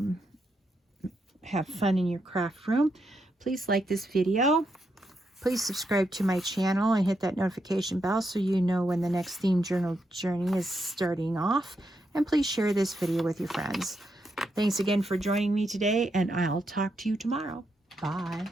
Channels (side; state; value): both; normal; correlation 0.81